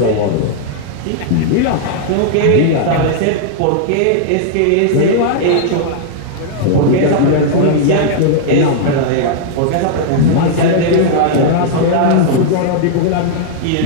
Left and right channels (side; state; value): both; different; correlation -0.01